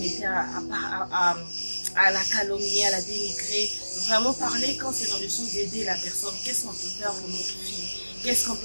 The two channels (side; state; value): both; inverted; correlation -1.00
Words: mettez à la calomnier, à la dénigrer. Vraiment parler quand c'est dans le sens d'aider la personne. Qu'est-ce qu'on peut faire pour notre fille? Qu'est-ce qu'on